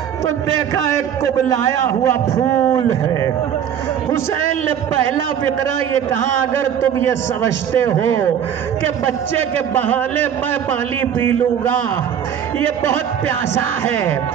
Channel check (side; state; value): left; quieter; 8.9 dB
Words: तो देखा एक कुबलाया हुआ फूल है। हुसैन ने पहला फिक्रा ये कहा, अगर तुम ये समझते हो कि बच्चे के बहाने मैं पानी पी लूंगा, ये बहुत प्यासा है,